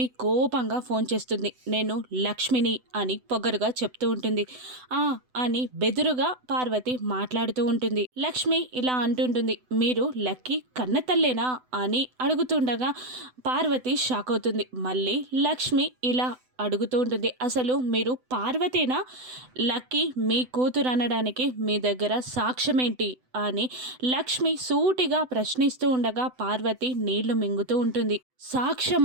కోపంగా ఫోన్ చేస్తుంది. నేను లక్ష్మిని అని పొగరుగా చెప్తూ ఉంటుంది. అని బెదురుగా పార్వతి మాట్లాడుతూ ఉంటుంది. లక్ష్మి ఇలా అంటుంటుంది, మీరు లక్కీ కన్నతల్లేనా అని అడుగుతుండగా పార్వతి షాక్ అవుతుంది. మళ్ళీ లక్ష్మి ఇలా అడుగుతూ ఉంటుంది, అసలు మీరు పార్వతేనా? లక్కీ మీ కూతురు అనడానికి మీ దగ్గర సాక్ష్యం ఏంటి అని లక్ష్మి సూటిగా ప్రశ్నిస్తూ ఉండగా పార్వతి నీళ్లు మింగుతూ ఉంటుంది.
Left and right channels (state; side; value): late; left; 7.9 ms